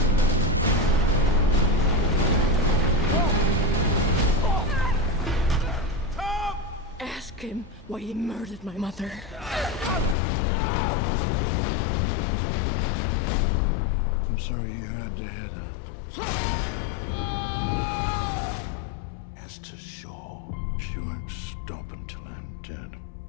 Tom! Ask him why he murdered my mother. I'm sorry you had to hear that. As to shore, she won't stop until I'm dead.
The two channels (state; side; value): drops out; right; at 10.2 s